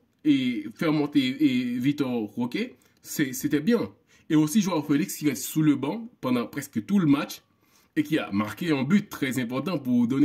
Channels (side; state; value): both; identical; correlation 1.00